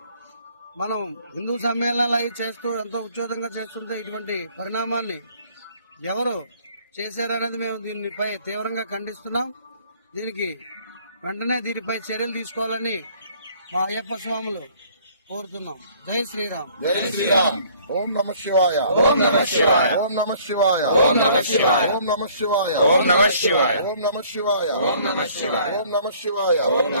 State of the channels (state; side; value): inverted; both; correlation -0.57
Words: మనం హిందూ సమ్మేళనాలు అవి చేస్తూ ఎంతో ఉద్యోగంగా చేస్తుంటే ఇటువంటి పరిణామాన్ని ఎవరు చేశారనేది మేము దీనిపై తీవ్రంగా ఖండిస్తున్నాం. దీనికి వెంటనే దీనిపై చర్యలు తీసుకోవాలని మా అయ్యప్ప స్వాములు కోరుతున్నాం. జై శ్రీరామ్. జై శ్రీరామ్. ఓం నమః శివాయ. ఓం నమః శివాయ. ఓం నమః శివాయ. ఓం నమః శివాయ. ఓం నమః శివాయ. ఓం నమః శివాయ. ఓం నమః శివాయ. ఓం నమః శివాయ. ఓం నమః శివాయ. ఓం